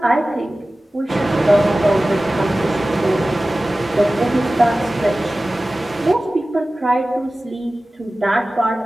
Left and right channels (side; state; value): both; normal; correlation 0.96